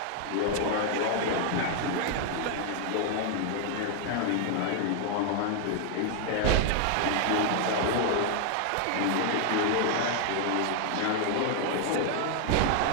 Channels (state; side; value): different; both; correlation 0.00